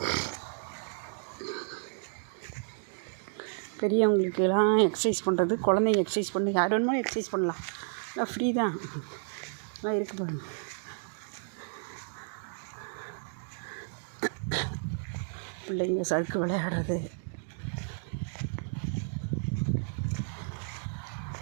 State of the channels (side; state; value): left; silent; digital silence